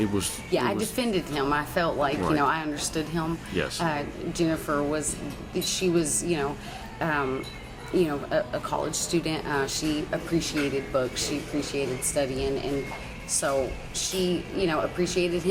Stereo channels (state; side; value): identical; both; correlation 1.00